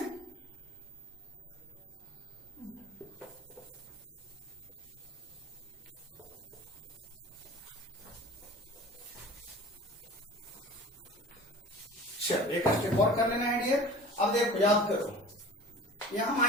चलो एक स्टेप और कर लेना है डियर। अब देखो याद करो, यहाँ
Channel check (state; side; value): normal; both; correlation 0.40